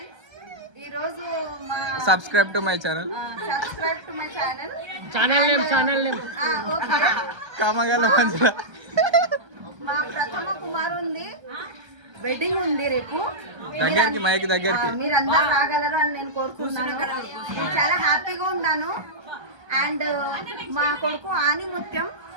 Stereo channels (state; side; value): late; left; 1.3 ms